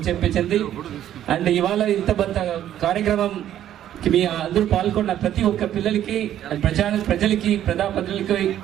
చెప్పించింది. అండ్ ఇవాళ ఇంత పెద్ద కార్యక్రమం మీ అందరూ పాల్గొన్న ప్రతి ఒక్క పిల్లలకి, ప్రజలకి, ప్రజలకి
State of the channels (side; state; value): left; quieter; 11.4 dB